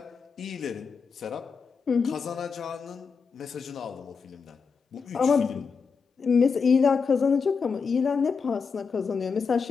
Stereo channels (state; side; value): quieter; right; 5.5 dB